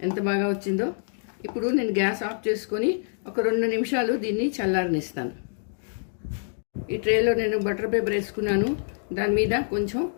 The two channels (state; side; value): silent; right; digital silence